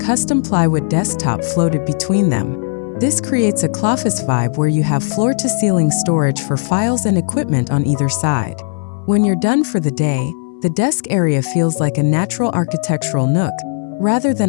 plywood desktop floated between them. This creates a office vibe where you have floor-to-ceiling storage for files and equipment on either side. When you're done for the day, the desk area feels like a natural architectural nook, rather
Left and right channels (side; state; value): right; silent; 61 dB below the other